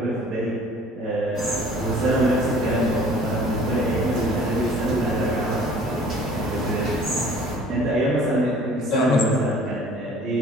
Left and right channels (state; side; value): normal; both; correlation 0.51